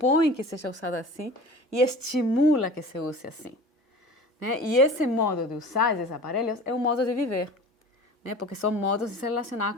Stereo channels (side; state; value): both; normal; correlation 0.39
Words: que seja usado assim e estimula que se use assim, né? E esse modo de usar esses aparelhos é um modo de viver, né? Porque são modos de se relacionar